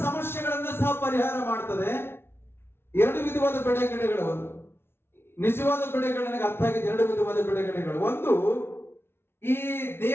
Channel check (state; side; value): late; right; 0.12 ms